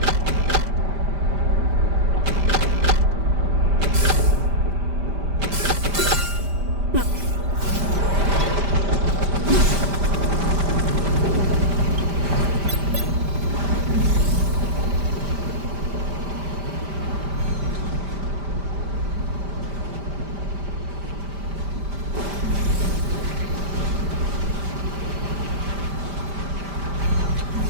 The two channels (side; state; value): left; late; 5.0 ms